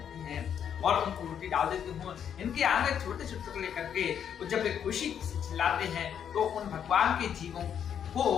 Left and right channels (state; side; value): quieter; right; 8.6 dB